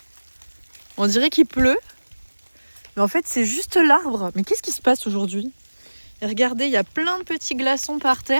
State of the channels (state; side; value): inverted; both; correlation -1.00